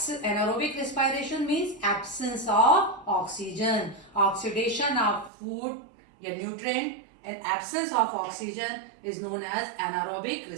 respiration means absence of oxygen, oxidation of food, a nutrient, and absence of oxygen is known as anaerobic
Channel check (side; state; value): left; drops out; at 5.3 s